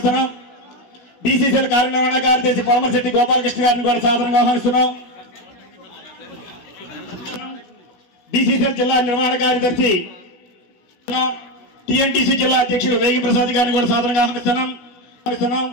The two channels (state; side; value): late; right; 16 ms